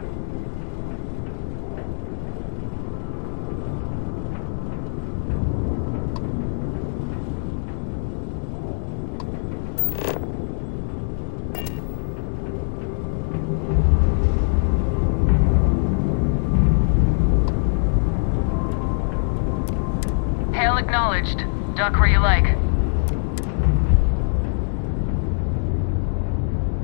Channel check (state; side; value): silent; right; digital silence